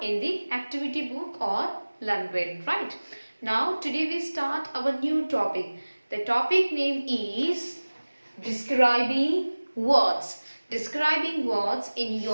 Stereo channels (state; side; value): inverted; both; correlation -1.00